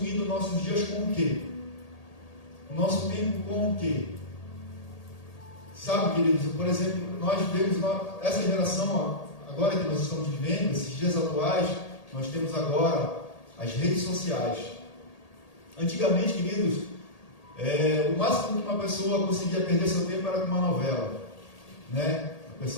nossos dias com o quê? Nosso tempo com o quê? Sabe, queridos, por exemplo, nós vemos essa geração agora que nós estamos vivendo, esses dias atuais, nós temos agora as redes sociais. Antigamente, queridos, o máximo que uma pessoa conseguia perder seu tempo era com uma novela, né? A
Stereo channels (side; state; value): right; late; 1.8 ms